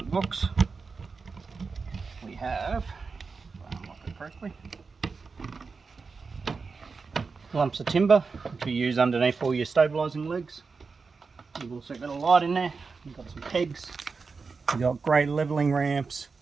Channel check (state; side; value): quieter; left; 4.7 dB